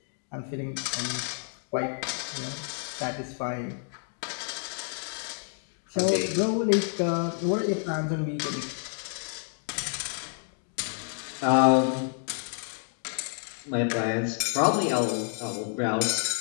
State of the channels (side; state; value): right; silent; 58 dB below the other